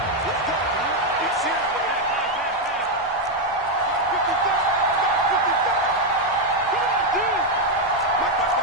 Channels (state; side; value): normal; both; correlation 0.03